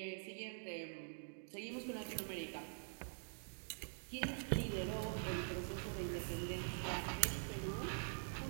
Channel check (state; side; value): silent; left; digital silence